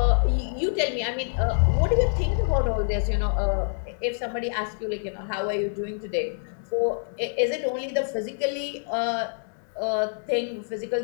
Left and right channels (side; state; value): right; silent; digital silence